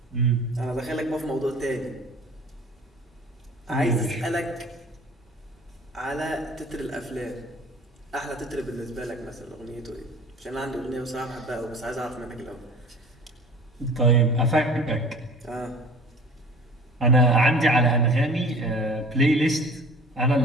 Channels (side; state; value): both; normal; correlation 0.45